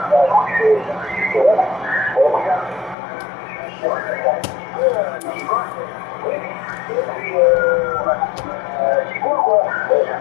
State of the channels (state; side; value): drops out; right; at 3.0 s